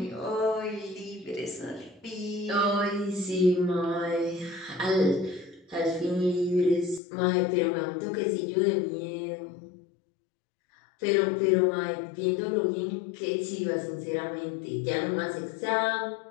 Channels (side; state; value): right; drops out; at 7.0 s